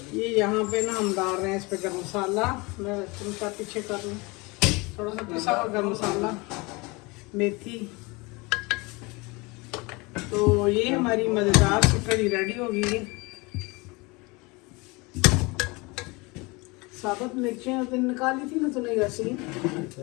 ये यहाँ पे ना हम डाल रहे हैं इस पे गरम मसाला। मैं तुमका पीछे कर लूँ, थोड़ा सा पिसा हुआ गरम मसाला, मेथी। तो ये हमारी मज़ेदार सी कड़ी रेडी हो गई है। साबुत मिर्चियाँ तो निकाली थी ना तूने ऐसी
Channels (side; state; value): right; quieter; 25.8 dB